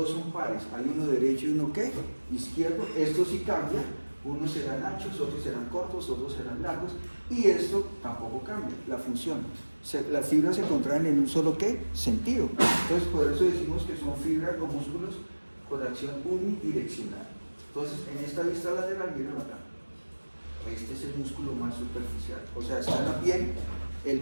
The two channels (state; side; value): inverted; both; correlation -1.00